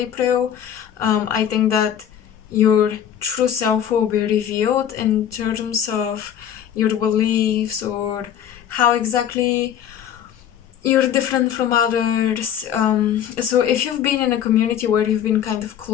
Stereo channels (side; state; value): right; quieter; 9.7 dB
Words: I think that your true self will be revealed in terms of your beliefs or how exactly you're different from others. So if you've been in a community where you've been kind of